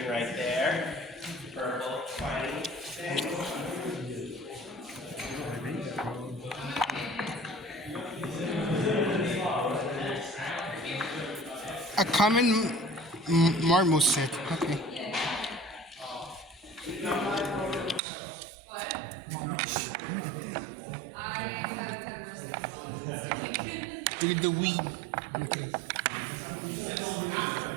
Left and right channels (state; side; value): drops out; left; at 18.0 s